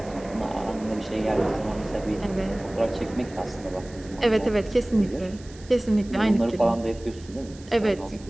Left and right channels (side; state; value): right; noise; hiss, 22 dB below the sound